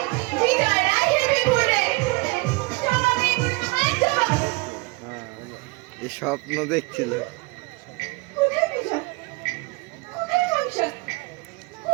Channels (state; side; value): quieter; left; 26.6 dB